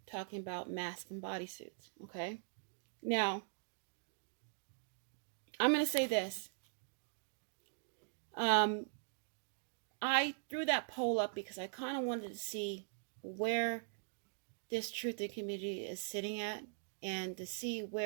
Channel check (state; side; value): silent; left; digital silence